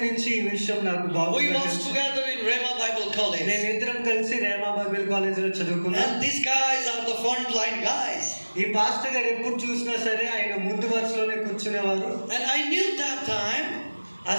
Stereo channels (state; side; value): inverted; both; correlation -1.00